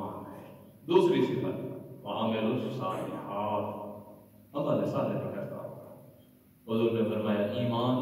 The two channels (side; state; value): both; identical; correlation 1.00